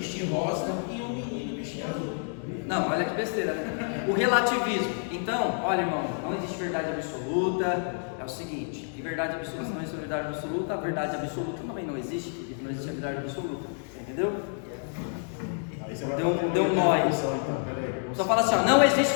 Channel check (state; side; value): silent; right; 57 dB below the other